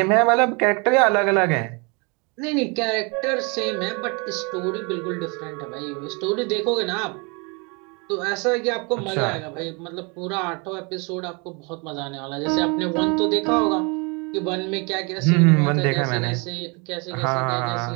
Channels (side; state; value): left; quieter; 31.2 dB